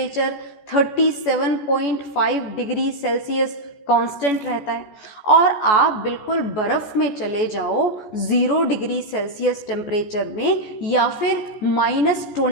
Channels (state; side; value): late; right; 14 ms